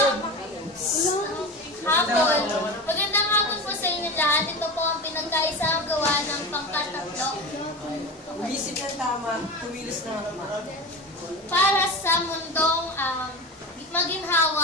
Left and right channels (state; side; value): normal; both; correlation 0.26